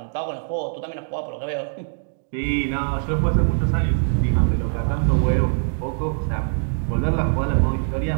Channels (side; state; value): left; silent; digital silence